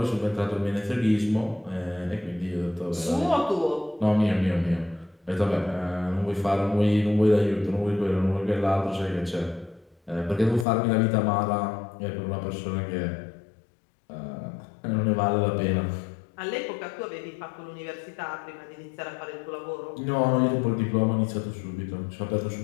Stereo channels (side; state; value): right; drops out; at 10.7 s